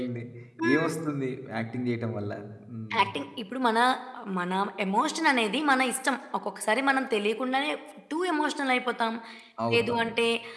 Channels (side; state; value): both; identical; correlation 1.00